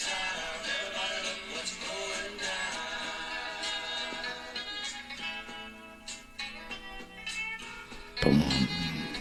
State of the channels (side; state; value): both; identical; correlation 1.00